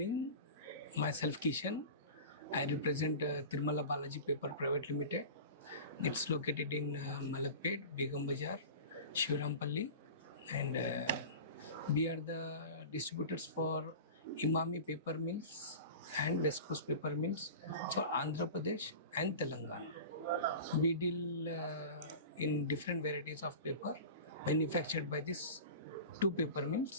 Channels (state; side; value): inverted; both; correlation -0.34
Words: Myself Kishan. I represent Tirumala Balaji Paper Pvt Ltd. It's located in Malakpet, Begum Bazaar, Shivrampalli, and we are the distributors for Imami paper mills and West Coast paper mills for Andhra Pradesh and Telangana. We deal in different varieties of paper manufactured by these two paper